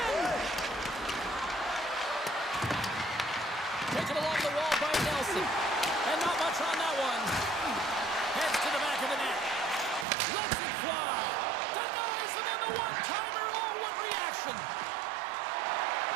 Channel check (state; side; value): drops out; left; at 10.1 s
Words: Taken along the wall by Nelson. And not much on that one. Heads to the back of the net. Lets it fly. Denies him on the one-timer. Oh, what reaction.